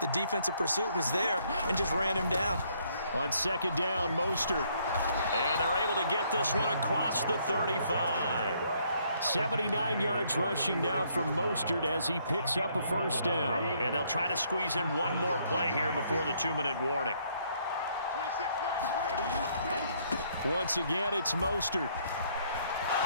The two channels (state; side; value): inverted; both; correlation -0.68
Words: defensive pursuit was there and just ran him down. On 2nd down, Mostert. And they're able to get this one across the 35. 79 yards rushing now from Mostert as he picks up a 1st down. And they'll try to squeeze in one more play here before the 2-minute warning. Once again, it's Mostert.